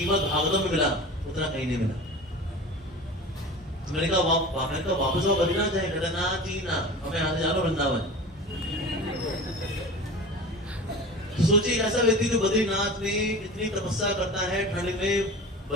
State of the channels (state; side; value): normal; both; correlation 0.35